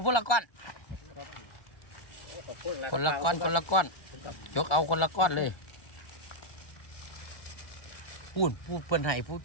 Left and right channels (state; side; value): late; right; 1.2 ms